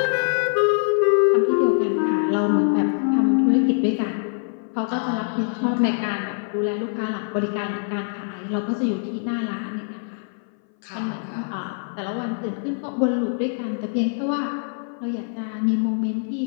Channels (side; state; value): right; silent; 58 dB below the other